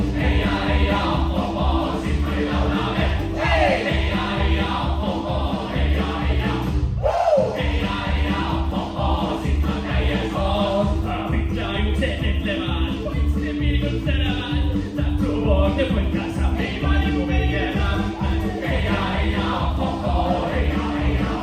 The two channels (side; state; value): both; identical; correlation 1.00